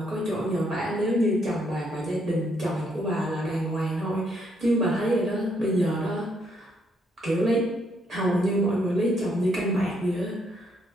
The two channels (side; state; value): both; normal; correlation 0.73